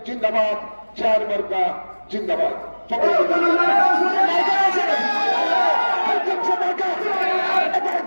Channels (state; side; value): inverted; both; correlation -1.00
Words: জিন্দাবাদ, চেয়ার মার্কা জিন্দাবাদ।